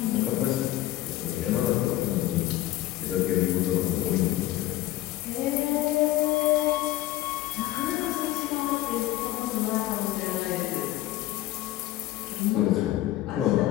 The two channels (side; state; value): right; quieter; 15.5 dB